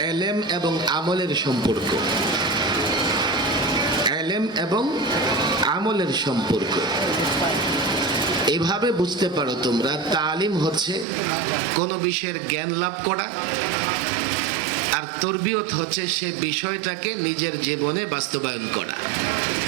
এলেম এবং আমলের সম্পর্ক। এলেম এবং আমলের সম্পর্ক এভাবে বুঝতে পারো তোমরা। তালিম হচ্ছে কোনো বিষয়ের জ্ঞান লাভ করা, আর তরবিয়ত হচ্ছে সে বিষয়টাকে নিজের জীবনে বাস্তবায়ন করা।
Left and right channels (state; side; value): drops out; left; at 11.1 s